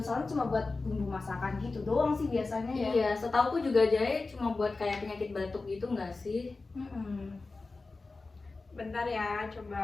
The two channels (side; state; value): right; quieter; 3.7 dB